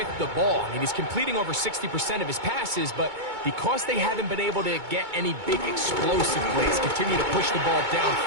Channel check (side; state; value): left; late; 2.2 ms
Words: the ball. I mean, he's completing over 60% of his passes, but because they haven't been able to get any big explosive plays, continue to push the ball